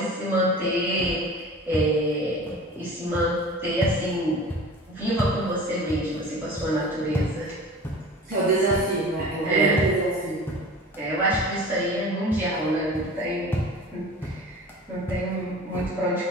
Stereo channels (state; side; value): normal; both; correlation 0.39